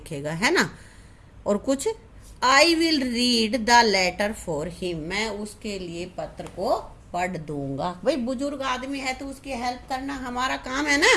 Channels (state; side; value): identical; both; correlation 1.00